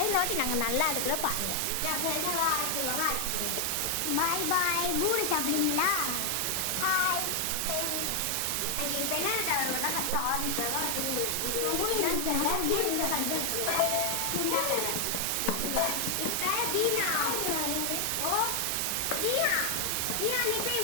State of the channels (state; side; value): different; both; correlation 0.00